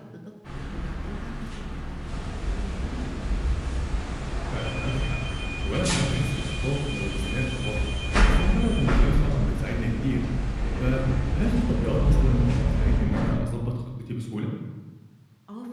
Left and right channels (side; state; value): both; identical; correlation 1.00